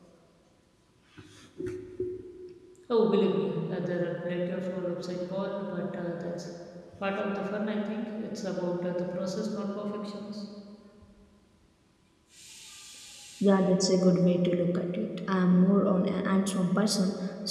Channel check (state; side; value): identical; both; correlation 1.00